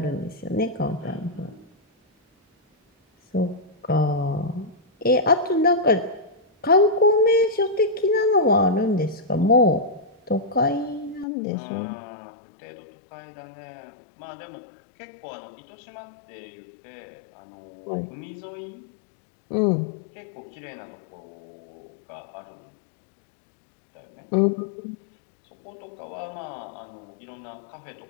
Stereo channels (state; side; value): drops out; right; at 11.2 s